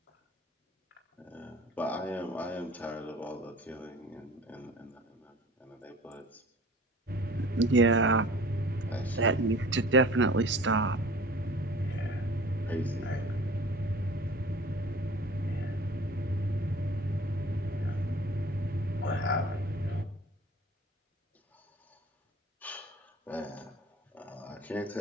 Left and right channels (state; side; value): normal; both; correlation 0.45